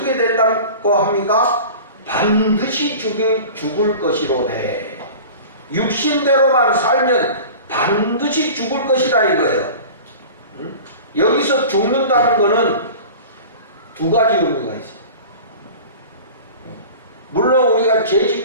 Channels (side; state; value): both; inverted; correlation -0.38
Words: 된다고 합니까? 반드시 죽을 것이로되. 육신대로만 살면 반드시 죽을 것이다 이거예요. 여기서 죽는다는 것은 두 가지 의미가 있어요. 물론 우리가 죄